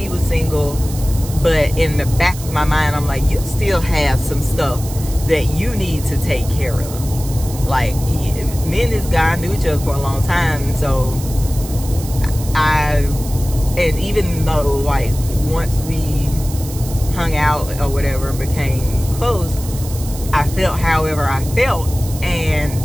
was single, but in the back of my mind, I'm like, you still have some stuff that you need to take care of. Like, me and this guy knew each other for a long time, so and even though, like, once we hung out or whatever and became close, I felt however I felt,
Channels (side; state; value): right; noise; hiss, 13 dB below the sound